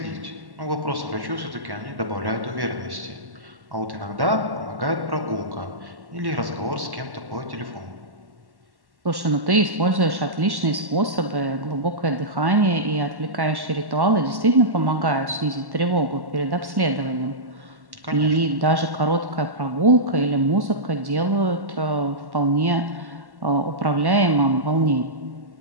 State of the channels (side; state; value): left; late; 1.1 ms